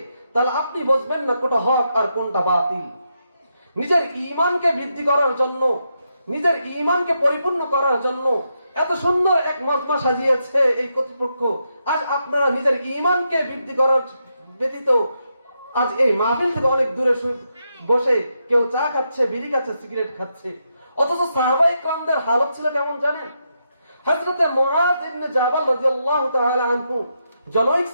তাহলে আপনি বুঝবেন না কোনটা হক আর কোনটা বাতিল। নিজের ঈমানকে বৃদ্ধি করার জন্য, নিজের ঈমানকে পরিপূর্ণ করার জন্য এত সুন্দর এক মজমা সাজিয়েছে এই কর্তৃপক্ষ। আজ আপনারা নিজের ঈমানকে বৃদ্ধি করার ব্যতীত আজ এই মাহফিল থেকে অনেক দূরে বসে কেউ চা খাচ্ছে, বিড়ি খাচ্ছে, সিগারেট খাচ্ছে। অথচ সাহাবায়ে কেরামদের হালত ছিল কেমন জানেন? হযরত মুআয ইবনে জাবাল রাদিয়াল্লাহু তাআলা আনহু জনৈক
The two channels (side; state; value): both; inverted; correlation -0.83